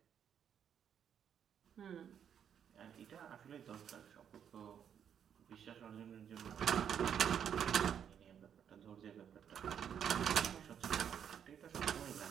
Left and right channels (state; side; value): quieter; left; 8.5 dB